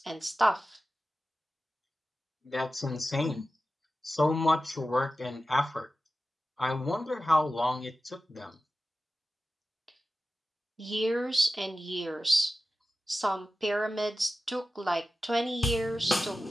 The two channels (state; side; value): normal; both; correlation 0.94